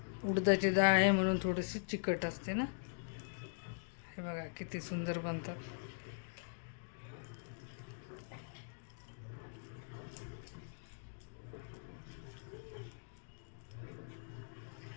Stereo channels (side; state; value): right; silent; digital silence